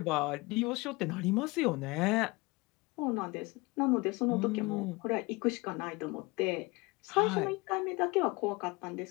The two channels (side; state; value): right; quieter; 24.5 dB